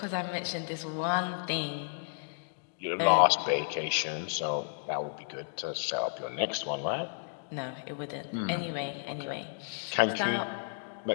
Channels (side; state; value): right; silent; digital silence